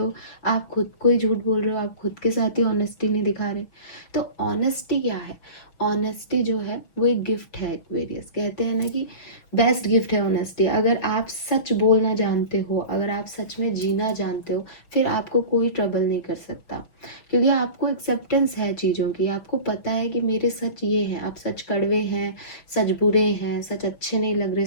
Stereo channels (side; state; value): right; late; 6.1 ms